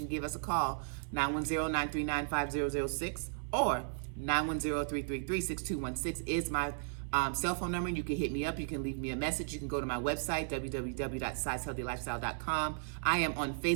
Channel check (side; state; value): left; silent; 54 dB below the other